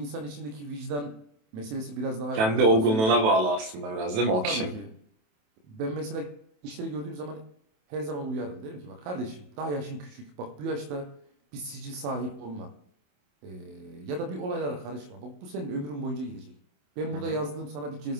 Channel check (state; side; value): late; left; 27 ms